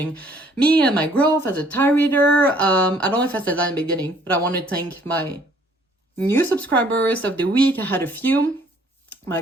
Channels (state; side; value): normal; both; correlation 0.61